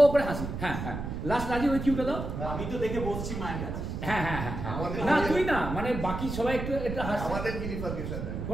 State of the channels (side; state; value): right; noise; rumble, 5 dB below the sound